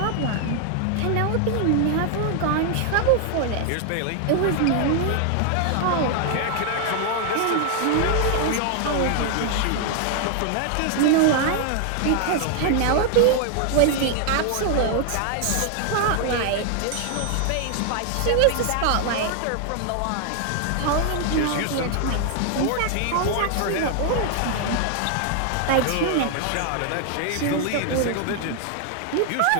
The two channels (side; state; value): both; different; correlation 0.00